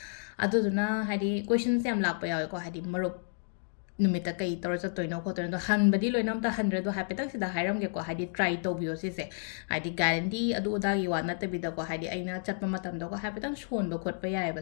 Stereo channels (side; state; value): right; silent; digital silence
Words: अदुदुना हाइदि क्वेश्चन्स याम लाक्पा यावेको हाइदि मरुप नुमिता कई तौर चतोइनो खोतोइनो हनबदी लोइनम ता हंड्रेड हाइपेतक सिदा हाइरमगेको हाइदि ट्राई तौबियो सिसे हाइदि गारंटी अदु उदागी वा नतबिदको हाइदि अइना चटपा मतमदको हाइपेतक सोनबो खोटपा